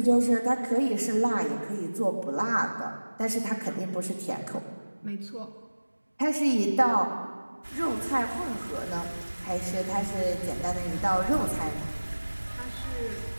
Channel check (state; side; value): inverted; both; correlation -1.00